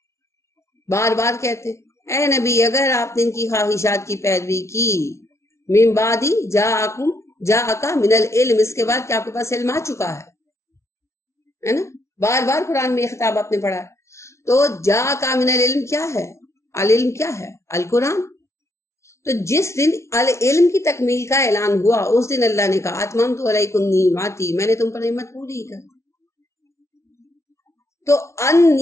بار بار کہتے ہیں اے نبی اگر آپ نے ان کی خواہشات کی پیروی کی، من بعدی جاءکا من العلم، اس کے بعد کہ آپ کے پاس علم آ چکا ہے نا. بار بار قرآن میں یہ خطاب آپ نے پڑھا ہے. تو جاءکا من العلم کیا ہے؟ العلم کیا ہے؟ القرآن. تو جس دن العلم کی تکمیل کا اعلان ہوا، اس دن اللہ نے کہا اتممت علیکم نعمتی، میں نے تم پر نعمت پوری کر. تو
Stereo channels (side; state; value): right; late; 0.13 ms